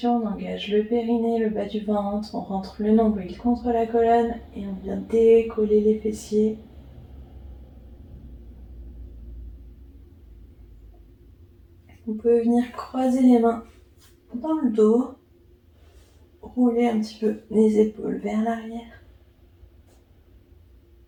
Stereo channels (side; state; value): both; identical; correlation 1.00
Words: on engage le périnée, le bas du ventre. On rentre le nombril contre la colonne et on vient décoller les fessiers. Vous pouvez venir croiser les mains dans le dos. Rouler un petit peu les épaules vers l'arrière.